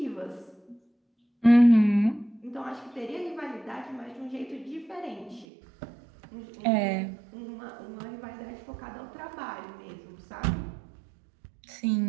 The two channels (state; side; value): drops out; left; at 5.5 s